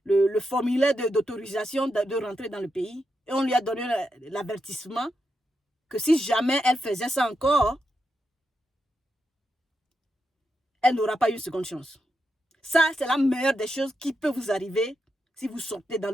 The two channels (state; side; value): normal; both; correlation 0.85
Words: le formulaire d'autorisation de rentrer dans le pays et on lui a donné l'avertissement que si jamais elle faisait ça encore, elle n'aura pas une seconde chance. Ça, c'est la meilleure des choses qui peut vous arriver si vous sortez dans